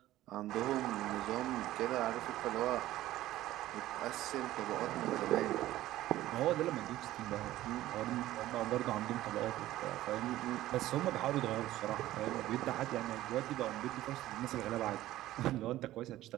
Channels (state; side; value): quieter; left; 15.0 dB